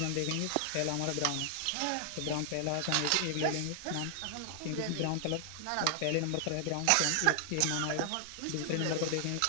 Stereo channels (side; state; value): both; different; correlation 0.00